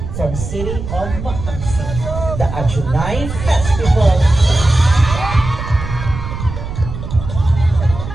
from City of Makati, the Ajunay Festival.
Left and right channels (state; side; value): noise; right; rumble, 7 dB below the sound